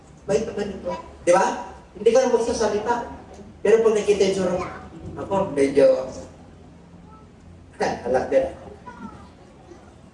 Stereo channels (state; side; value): identical; both; correlation 1.00